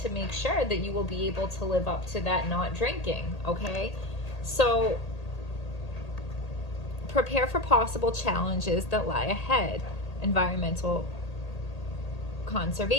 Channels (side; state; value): right; late; 1.8 ms